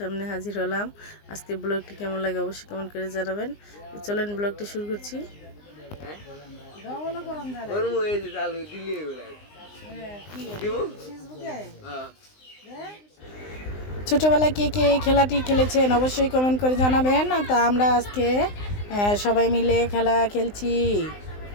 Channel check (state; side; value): late; right; 19 ms